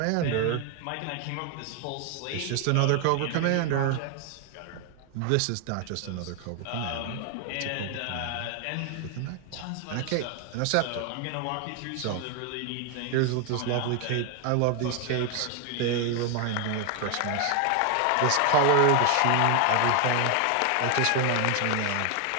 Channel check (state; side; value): different; both; correlation 0.01